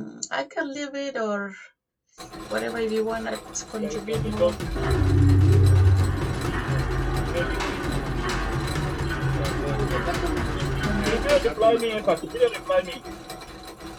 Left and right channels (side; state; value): both; identical; correlation 1.00